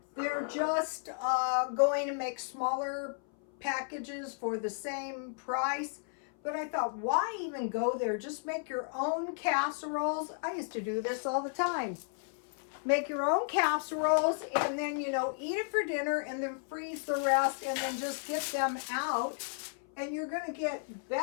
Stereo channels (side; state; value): right; silent; 56 dB below the other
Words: they're just going to make smaller packages for the same price. But I thought, why even go there? Just make your own casseroles. I used to do this all the time. Make your own casseroles, and then, eat it for dinner, and then freeze the rest, and then just get them out. And you're going to get